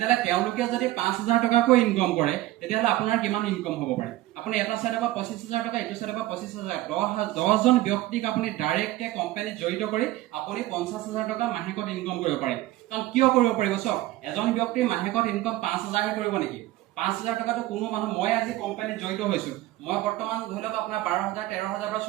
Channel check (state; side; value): quieter; left; 16.3 dB